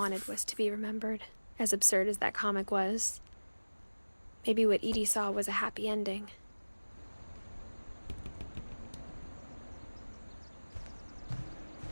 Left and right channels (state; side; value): inverted; both; correlation -1.00